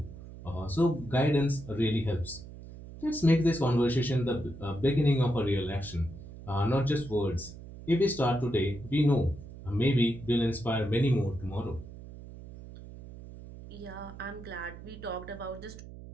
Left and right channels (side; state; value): right; noise; hum, 15 dB below the sound